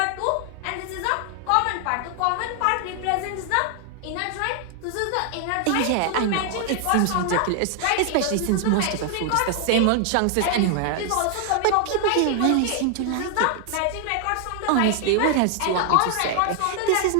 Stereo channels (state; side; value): different; both; correlation 0.00